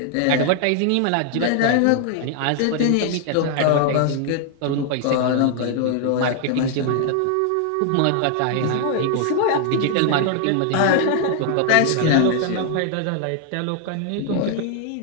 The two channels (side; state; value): both; different; correlation 0.00